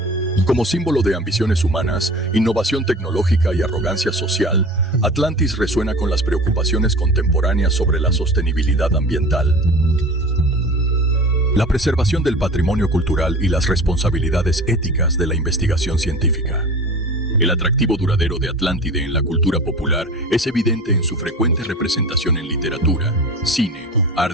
Como símbolo de ambiciones humanas, innovación tecnológica y arrogancia social, Atlantis resuena con las preocupaciones contemporáneas sobre la sostenibilidad ambiental. La preservación del patrimonio cultural y las responsabilidades éticas de la investigación científica. El atractivo duradero de Atlántide en la cultura popular es evidente en su frecuente representación en literatura, cine,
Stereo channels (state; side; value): normal; both; correlation 0.37